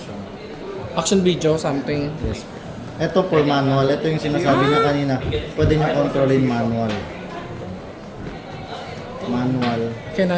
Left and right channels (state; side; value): identical; both; correlation 1.00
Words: action video, something. Yes po. Ito po manual. Ito yung sinasabi niya kanina. Pwede niyo kontrolin manual. Manual. Can